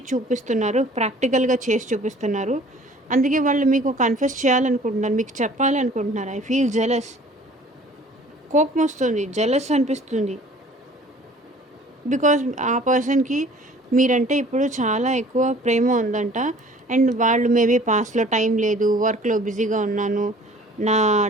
చూపిస్తున్నారు, ప్రాక్టికల్గా చేసి చూపిస్తున్నారు. అందుకే వాళ్ళు మీకు కన్ఫెస్ చేయాలనుకుంటున్నారు, మీకు చెప్పాలనుకుంటున్నారు. I feel jealous. కోపం వస్తుంది, జెలస్ అనిపిస్తుంది. బికాజ్ ఆ పర్సన్కి మీరంటే ఇప్పుడు చాలా ఎక్కువ ప్రేమ ఉందంట. అండ్ వాళ్ళు మేబీ పాస్ట్లో టైం లేదు, వర్క్లో బిజీగా ఉన్నాను, నా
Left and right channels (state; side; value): normal; both; correlation 0.51